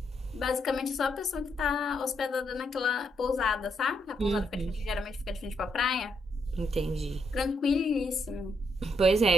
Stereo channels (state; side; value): normal; both; correlation 0.77